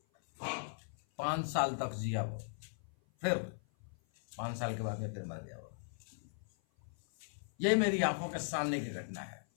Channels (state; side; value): silent; right; 52 dB below the other